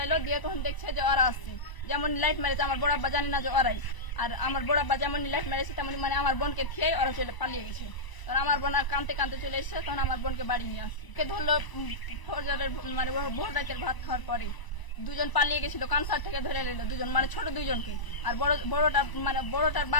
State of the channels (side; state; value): right; late; 1.0 ms